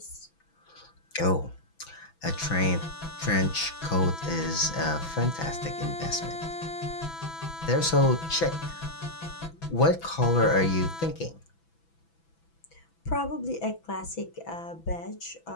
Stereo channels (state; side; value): late; right; 6.0 ms